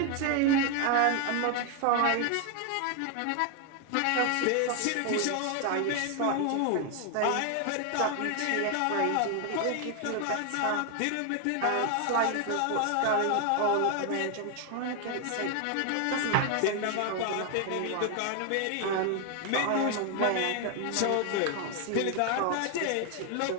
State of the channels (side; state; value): both; different; correlation 0.01